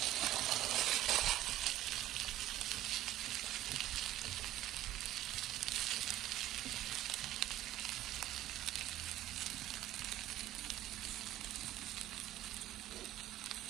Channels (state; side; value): quieter; left; 14.0 dB